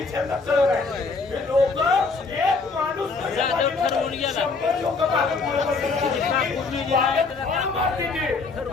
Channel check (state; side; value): quieter; right; 4.2 dB